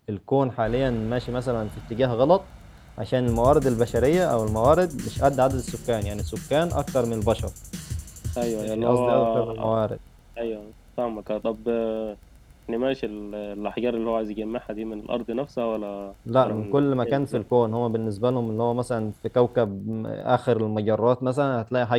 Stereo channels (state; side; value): identical; both; correlation 1.00